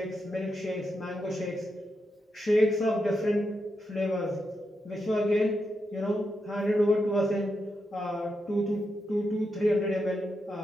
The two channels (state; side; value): normal; both; correlation 0.85